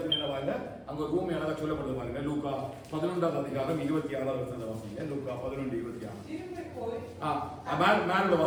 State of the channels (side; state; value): both; identical; correlation 1.00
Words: என்ன வாங்க அங்க ஒரு ஊமை அழகா சொல்லப்படுது பாருங்க. லூக்கா 11வது அதிகாரம் 26வது வசனத்தை வாசிங்க. லூக்கா 11:26. திரும்பி போய் மேல